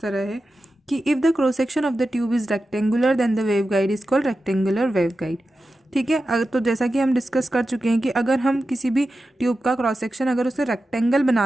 तरह है कि if the cross section of the tube is rectangular then the waveguide is called rectangular waveguide. ठीक है, अगर तो जैसा कि हम डिस्कस कर चुके हैं कि अगर हम किसी भी ट्यूब का क्रॉस सेक्शन अगर उसे रेक्टेंगल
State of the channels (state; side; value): normal; both; correlation 0.92